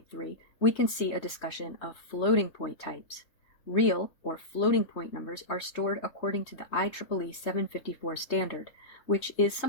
we can see a discussion of floating point types. Real or floating point numbers are stored according to the IEEE 754 standard, which is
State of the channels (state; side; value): late; right; 3.3 ms